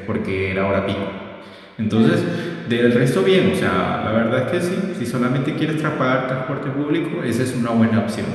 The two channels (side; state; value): both; identical; correlation 1.00